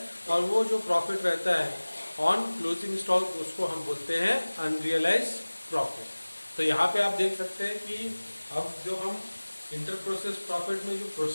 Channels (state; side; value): inverted; both; correlation -1.00